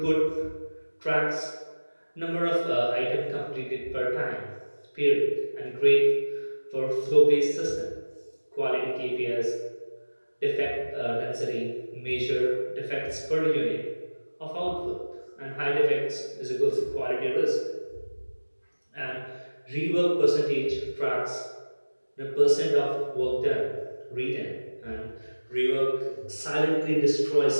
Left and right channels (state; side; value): inverted; both; correlation -1.00